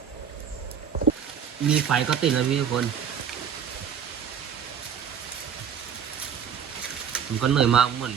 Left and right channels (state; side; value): quieter; left; 7.8 dB